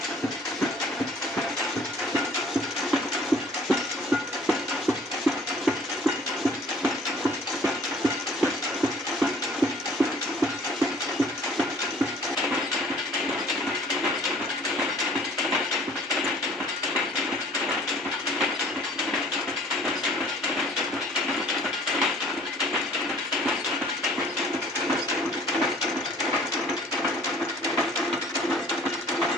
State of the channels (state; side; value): normal; both; correlation 0.53